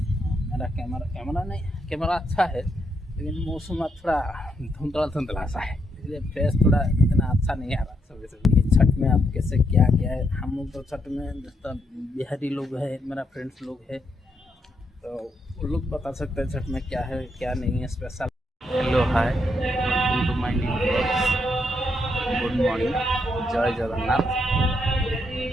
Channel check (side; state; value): both; normal; correlation 0.78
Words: मेरा कैमरा अच्छा है, लेकिन मौसम थोड़ा धुंधला सा है, इसलिए फेस थोड़ा इतना अच्छा नहीं आ रहा सुबह सुबह। ये छठ में आप कैसे क्या क्या है, हम लोग तो छठ में जितना बिहारी लोग है, मेरा फ्रेंड्स लोग है, तो वो लोग बता सकते हैं छठ में क्या है क्या नहीं है special. Hello hi, welcome to my new blogs. Good morning. जय जगन्नाथ।